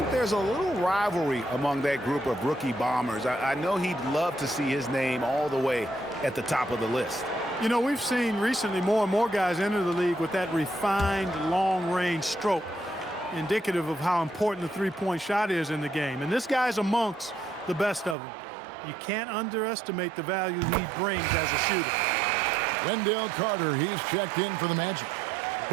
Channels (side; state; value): left; drops out; at 18.2 s